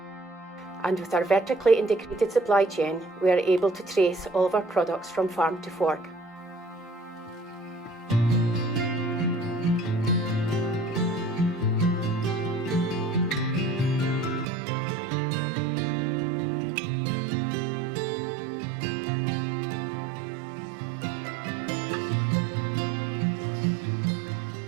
And with our vertically integrated supply chain, we are able to trace all of our products from farm to fork.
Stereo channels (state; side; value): drops out; left; at 14.5 s